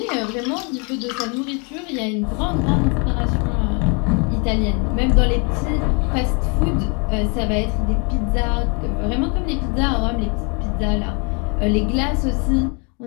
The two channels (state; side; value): quieter; right; 34.4 dB